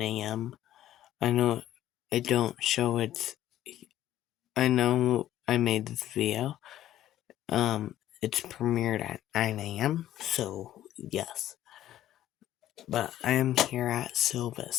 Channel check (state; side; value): quieter; right; 12.8 dB